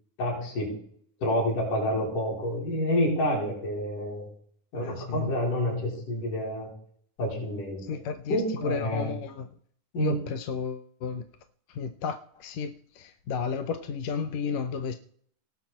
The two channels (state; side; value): late; right; 11 ms